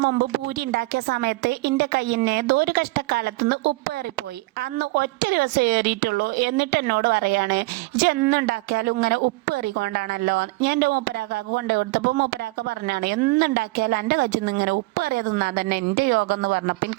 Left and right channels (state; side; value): quieter; left; 23.1 dB